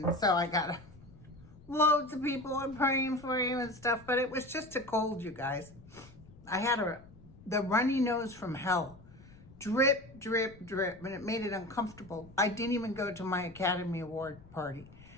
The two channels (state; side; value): noise; left; rumble, 22 dB below the sound